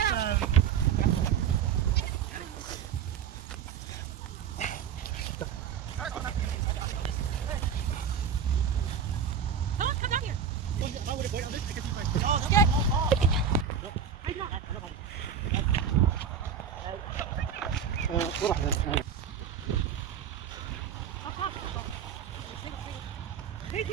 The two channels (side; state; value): left; quieter; 7.5 dB